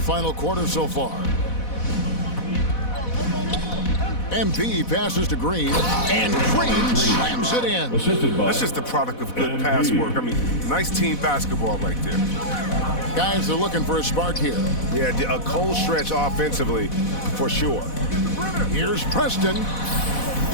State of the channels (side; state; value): right; late; 4.1 ms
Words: quarter so far. MP passes to Green, and Green slams it in. That's just the product of good pass work. I mean, nice team basketball right there. Guys are looking for a spark here. Yeah, a cold stretch offensively, for sure. Here's Preston.